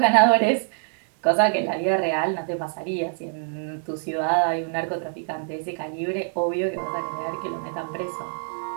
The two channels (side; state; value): left; silent; 62 dB below the other